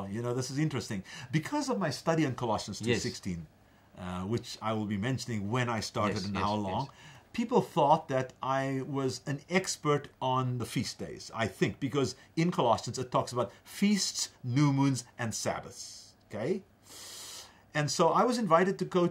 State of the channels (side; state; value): both; identical; correlation 1.00